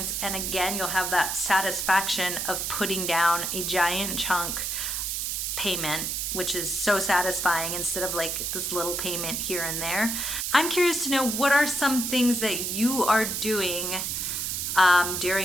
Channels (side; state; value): right; noise; hiss, 1 dB below the sound